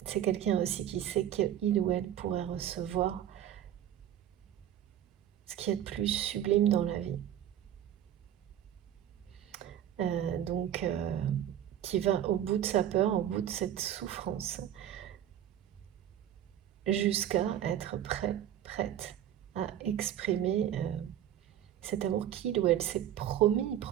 c'est quelqu'un aussi qui sait qu'il ou elle pourrait recevoir ce qu'il y a de plus sublime dans la vie. Donc, qui va au bout de sa peur, au bout de cette souffrance, jusqu'à être prête à exprimer cet amour qu'il ou elle s'est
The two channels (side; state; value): left; quieter; 10.9 dB